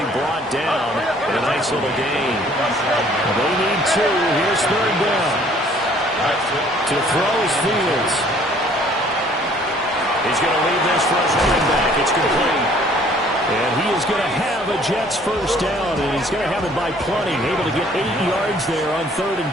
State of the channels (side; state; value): both; normal; correlation 0.57